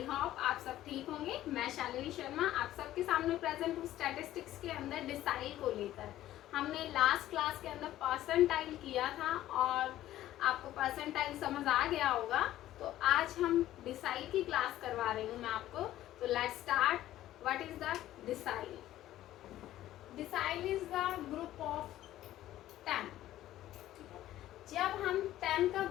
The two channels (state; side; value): quieter; right; 13.8 dB